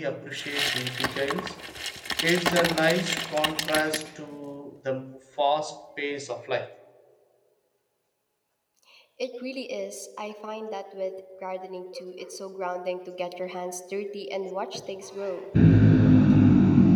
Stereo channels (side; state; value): both; identical; correlation 1.00